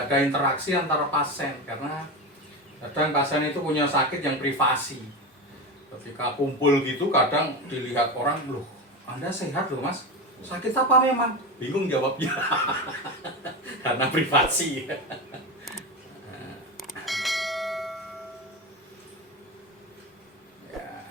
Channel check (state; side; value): normal; both; correlation 0.20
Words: ada interaksi antara pasien karena kadang pasien itu punya sakit yang privasi. Ketika kumpul gitu kadang dilihat orang, loh Anda sehat loh Mas, sakit apa memang? Bingung jawabnya karena privasi.